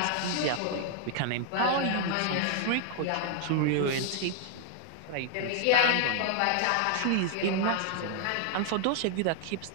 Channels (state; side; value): different; both; correlation -0.01